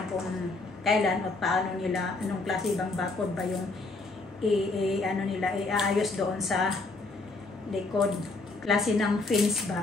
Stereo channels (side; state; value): right; quieter; 3.5 dB